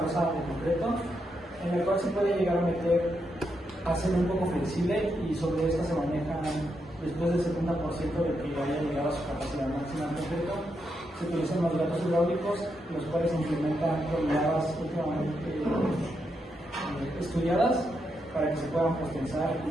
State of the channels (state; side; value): normal; both; correlation 0.82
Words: losa de concreto, en el cual se puede llegar a meter, hacer un poco flexible y sobre esta se maneja después del 70% de que haya llegado a su capacidad máxima en concreto. Se utilizan los gatos hidráulicos, los cuales se implementan toneladas últimamente estudiadas para que se puedan pospensar y